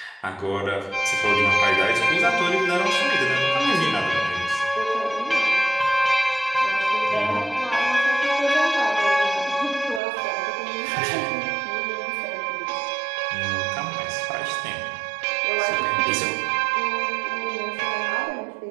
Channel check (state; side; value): drops out; left; at 10.0 s